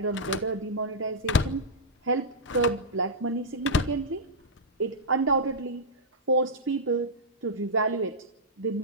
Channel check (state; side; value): normal; both; correlation -0.11